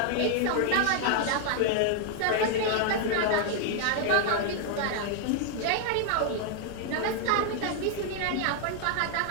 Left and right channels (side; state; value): both; different; correlation 0.00